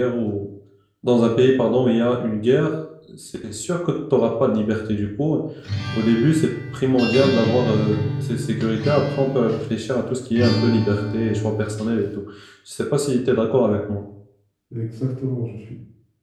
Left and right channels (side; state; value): both; identical; correlation 1.00